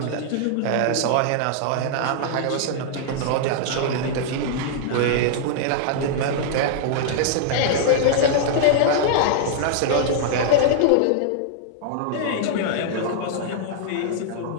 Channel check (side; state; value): both; different; correlation -0.01